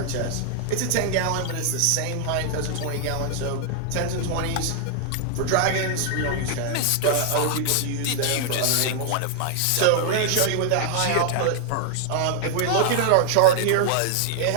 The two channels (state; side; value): different; both; correlation 0.00